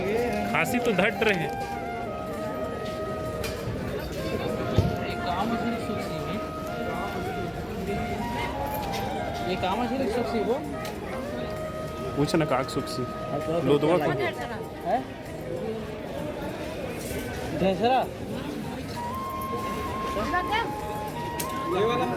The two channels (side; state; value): both; identical; correlation 1.00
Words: तो धट रहे हैं। ये काम है सुखसी वो पूछ ना काक सुखसी लो दो को है ढेसरा ये वाला